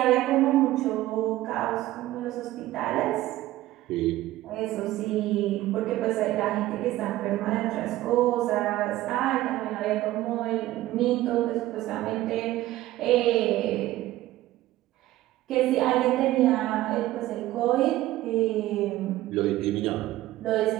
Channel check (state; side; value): quieter; left; 15.7 dB